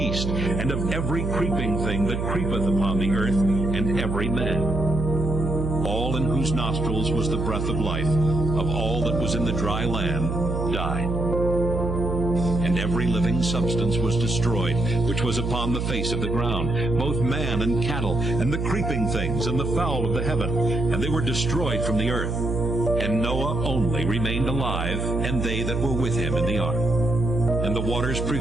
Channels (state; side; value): noise; right; hum, 2 dB below the sound